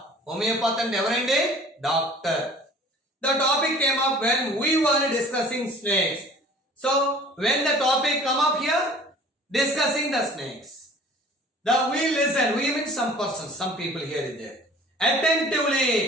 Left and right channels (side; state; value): both; normal; correlation 0.48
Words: అంటే ఎవరండి doctor. The topic came up when we were discussing snakes. So, when the topic come up here, discussing the snakes, we listen. We mean some persons, some people here is there. Attentively,